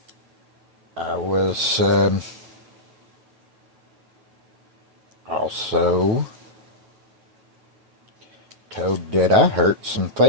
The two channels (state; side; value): late; left; 9.2 ms